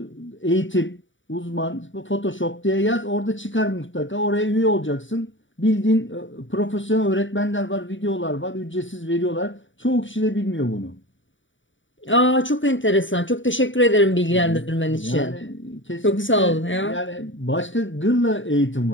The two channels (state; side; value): late; right; 0.56 ms